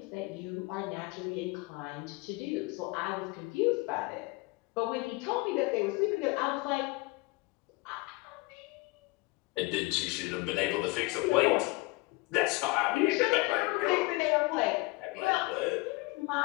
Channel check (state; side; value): quieter; right; 24.3 dB